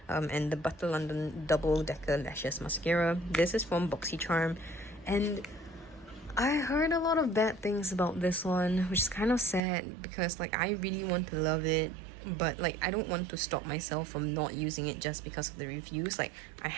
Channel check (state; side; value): drops out; left; at 9.6 s